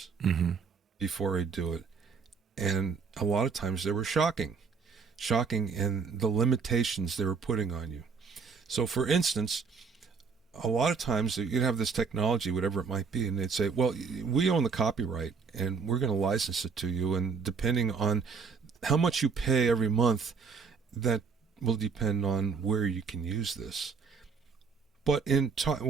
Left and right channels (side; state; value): left; quieter; 5.5 dB